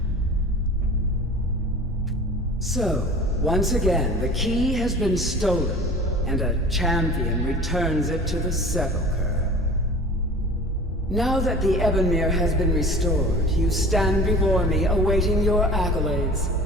So, once again, the key has been stolen, and a champion returns it to the Sepulcher. Now that the Ebonmere has been restored, you stand before me awaiting your accolades.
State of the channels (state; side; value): normal; both; correlation 0.41